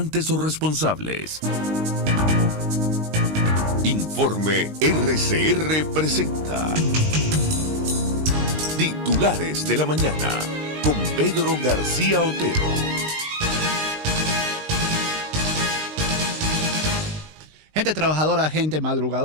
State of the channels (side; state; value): left; late; 19 ms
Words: o responsables. Informe RCR presenta Titulares de la Mañana con Pedro García Otero. Gente trabajadora, gente